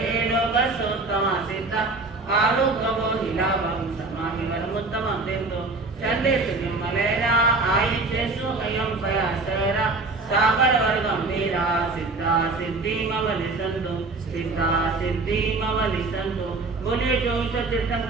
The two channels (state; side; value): quieter; left; 3.5 dB